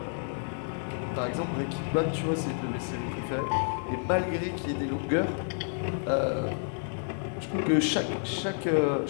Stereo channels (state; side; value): silent; right; 58 dB below the other